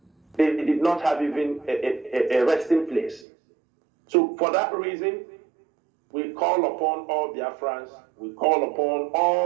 They did not have even a resting place. So for that reason, we call upon all Biafrans, we call upon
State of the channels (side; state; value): left; drops out; at 3.2 s